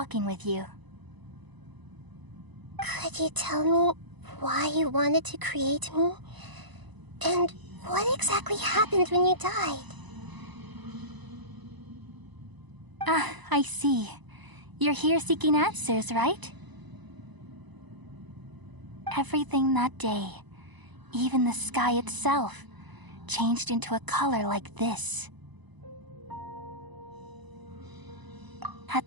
with you. Could you tell me why you wanted to create me? And what exactly happened when you died? Ah, I see. You're here seeking answers, right? Everything that day, even the sky itself, changed into a color like this.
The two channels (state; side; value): late; left; 1.0 ms